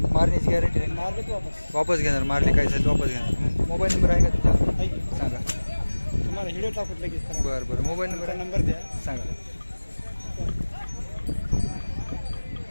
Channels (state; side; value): inverted; both; correlation -1.00